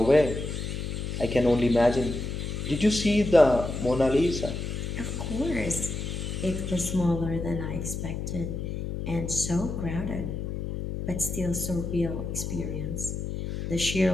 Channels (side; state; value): left; noise; hum, 4 dB below the sound